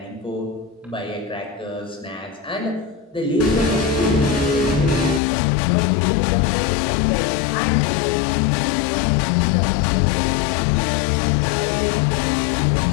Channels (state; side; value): drops out; right; at 5.2 s